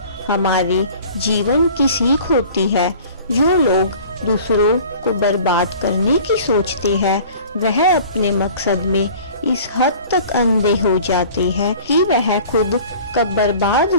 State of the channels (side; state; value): both; inverted; correlation -0.46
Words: हमारे जीवन की सीख होती है। जो लोग दूसरों को बर्बाद करने की सोचते हैं, वह अपने मकसद में इस हद तक अंधे हो जाते हैं कि वह खुद कब बर्बाद